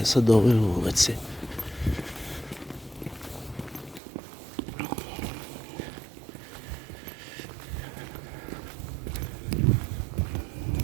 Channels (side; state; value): left; drops out; at 4.0 s